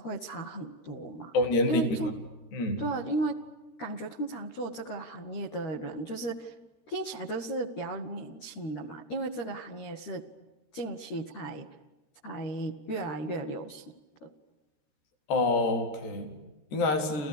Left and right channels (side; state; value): right; late; 13 ms